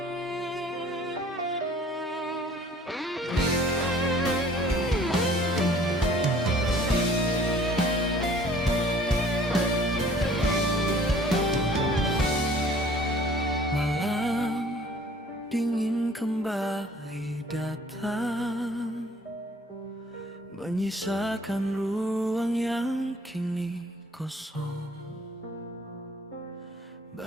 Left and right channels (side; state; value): both; normal; correlation 0.54